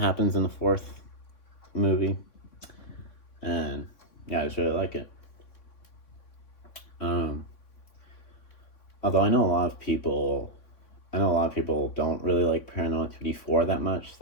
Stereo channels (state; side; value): late; right; 3.6 ms